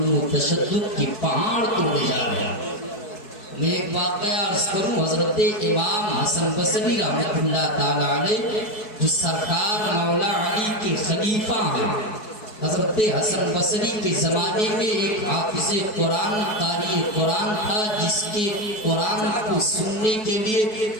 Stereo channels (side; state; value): right; late; 4.6 ms